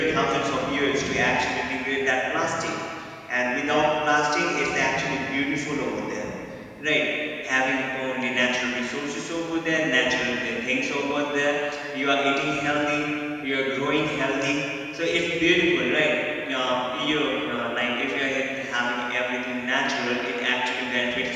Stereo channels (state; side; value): identical; both; correlation 1.00